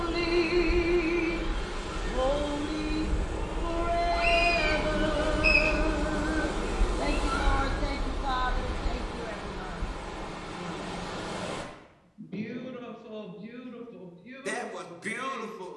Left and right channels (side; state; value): both; identical; correlation 1.00